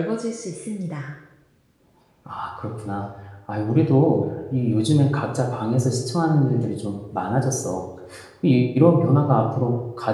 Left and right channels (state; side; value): identical; both; correlation 1.00